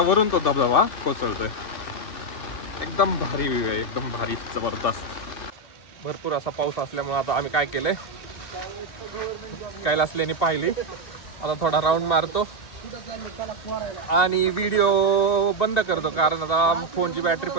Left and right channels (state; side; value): late; right; 2.3 ms